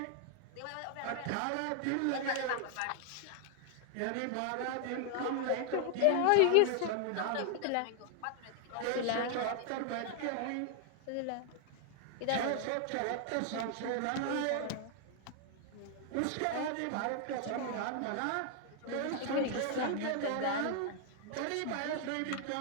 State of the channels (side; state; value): both; different; correlation 0.00